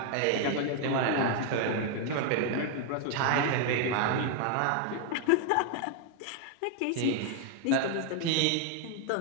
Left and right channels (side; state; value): both; different; correlation 0.01